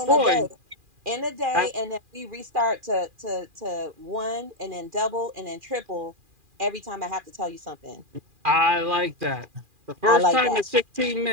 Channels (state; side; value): late; left; 2.4 ms